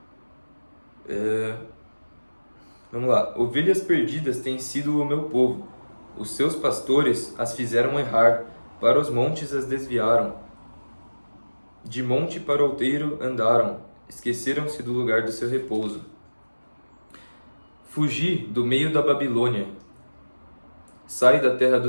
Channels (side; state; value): both; inverted; correlation -1.00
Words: vamos lá. Ovelhas perdidas têm sido o meu povo. Os seus pastores as fizeram errar, para os montes as desviaram. De monte para outeiro andaram, esqueceram-se do lugar do seu repouso. Fugi do meio da Babilônia. Sai da terra